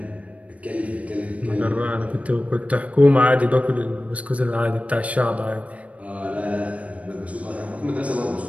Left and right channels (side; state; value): left; late; 0.066 ms